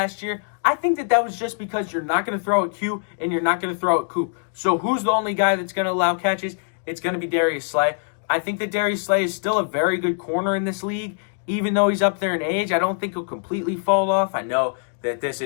year. I think that was just because you're not going to throw at Q and you're not going to throw at Coop. So who's the only guy that's going to allow catches? It's going to be Darius Slay. I think that Darius Slay is still a very good corner in this league. Even though he's up there in age, I don't think he'll completely fall off. I know that this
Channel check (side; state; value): right; silent; 63 dB below the other